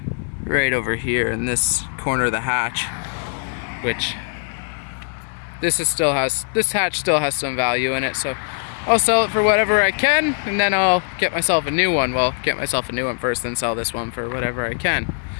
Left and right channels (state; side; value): silent; right; digital silence